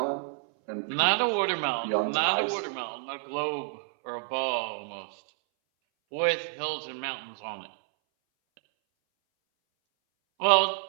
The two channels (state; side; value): silent; left; 58 dB below the other